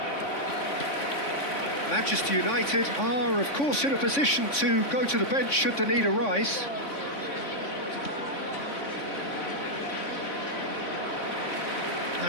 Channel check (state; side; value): late; right; 3.5 ms